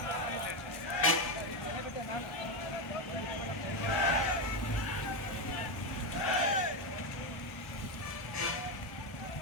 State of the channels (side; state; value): right; late; 1.1 ms